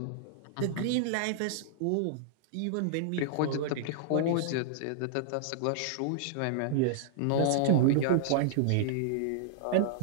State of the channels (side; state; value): both; different; correlation -0.01